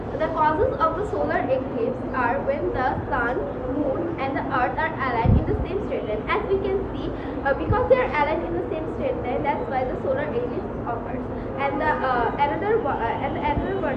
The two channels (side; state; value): both; identical; correlation 1.00